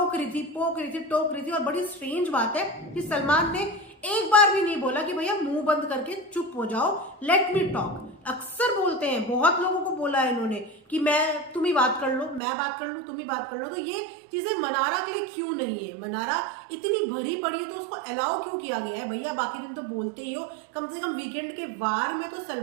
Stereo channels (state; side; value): drops out; left; at 12.4 s